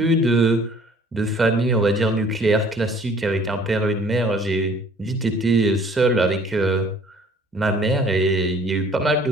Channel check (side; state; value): both; normal; correlation 0.54